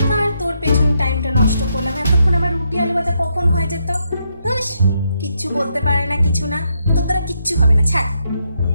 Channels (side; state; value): both; inverted; correlation -0.79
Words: তোর পেছনে টাইমটা নষ্ট করলাম, এতক্ষণ আমার রুটি আলু ভাজা কখন হয়ে যেত। বেশ, কিচ্ছু বলতে পারে না, কিছু না, তোর দ্বারা কিচ্ছু হবে না, ছাড়।